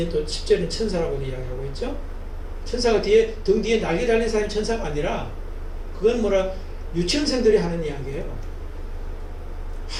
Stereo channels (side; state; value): both; identical; correlation 1.00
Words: 또 10절은 천사라고 이야기하고 있죠. 천사가 등 뒤에 날개 달린 사람이 천사가 아니라 그건 유치원생들이 하는 이야기예요.